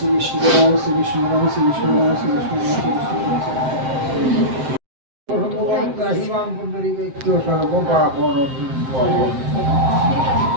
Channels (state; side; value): late; left; 7.7 ms